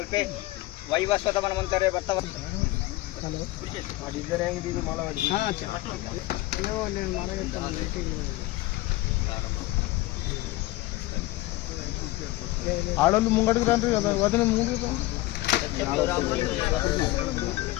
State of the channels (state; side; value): quieter; right; 18.6 dB